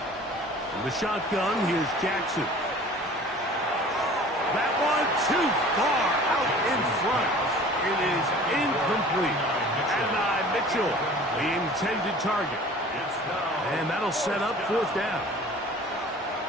In the shotgun, here's Jackson. That one too far out in front. It is incomplete. And Mitchell, the intended target. And that'll set up 4th down.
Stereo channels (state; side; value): normal; both; correlation 0.45